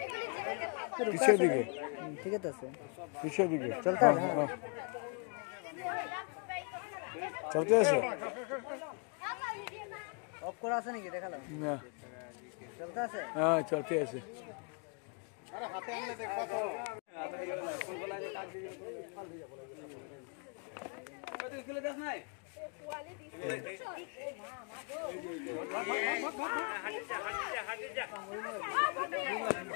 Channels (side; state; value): right; quieter; 36.1 dB